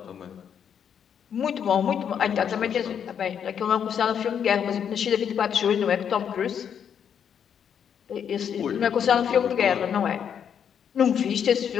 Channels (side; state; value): right; quieter; 8.2 dB